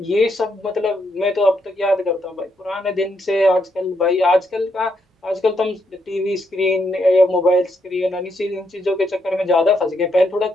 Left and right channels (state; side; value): normal; both; correlation 0.77